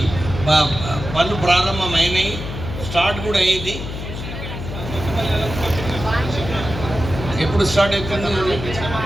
పనులు ప్రారంభమైనాయి, స్టార్ట్ కూడా అయ్యింది. ఎప్పుడు స్టార్ట్ అవుతుంది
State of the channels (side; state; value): left; noise; hum, 8 dB below the sound